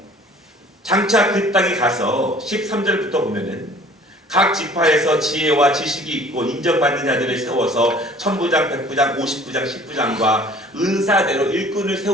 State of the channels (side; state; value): both; normal; correlation 0.51